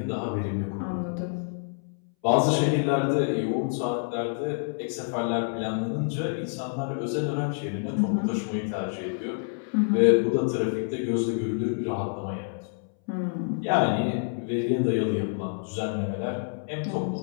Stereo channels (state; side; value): silent; right; 60 dB below the other